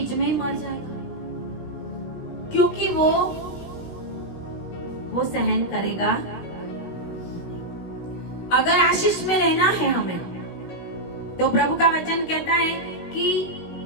में ही मर जाएगा, क्योंकि वो सहन करेगा। अगर आशीष में रहना है हमें, तो प्रभु का वचन कहता है कि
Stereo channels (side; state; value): right; late; 17 ms